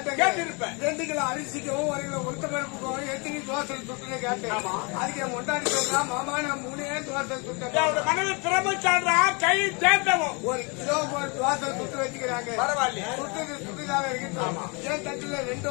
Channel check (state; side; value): quieter; right; 31.4 dB